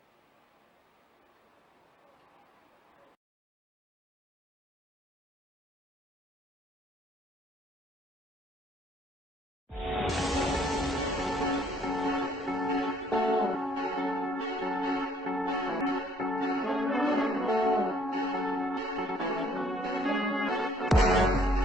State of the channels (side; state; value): both; normal; correlation 0.63